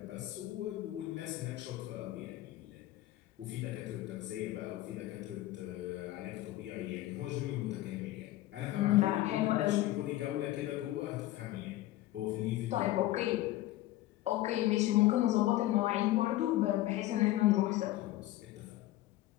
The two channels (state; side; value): quieter; right; 15.9 dB